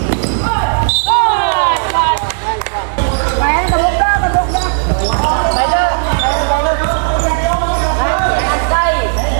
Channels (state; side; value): silent; left; digital silence